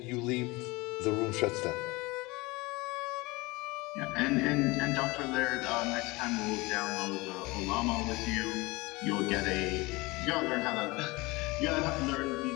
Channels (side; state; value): right; quieter; 23.2 dB